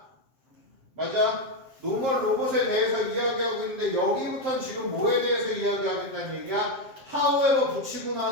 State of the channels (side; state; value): left; late; 7.5 ms